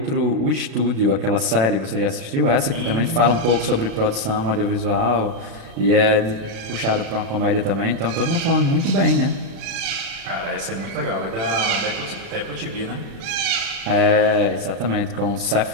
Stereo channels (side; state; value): left; late; 36 ms